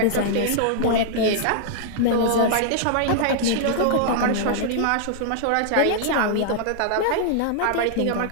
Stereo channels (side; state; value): both; different; correlation -0.01